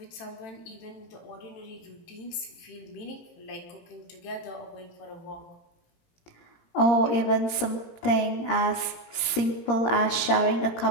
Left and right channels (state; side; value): late; right; 17 ms